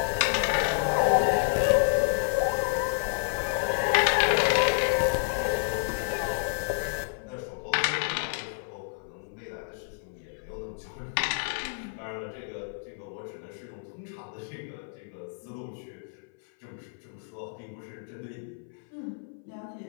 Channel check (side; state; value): right; silent; 58 dB below the other